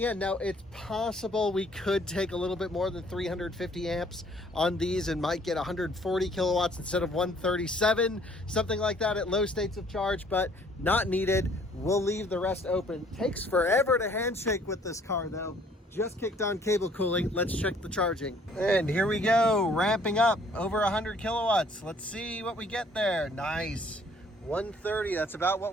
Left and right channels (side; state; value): both; normal; correlation 0.60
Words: end. Now, it's possible we could take a little bit more than 350 amps on these and might get 140 kilowatts instead of 137, something like that at low states of charge, but not needed. We'll leave the rest open. Takes forever to handshake with this car, though. Just kicked on cable cooling. Let's check the charging. And here we go, ramping up over 100 kilowatts. Let's see what we get there. Nice. 130, that's about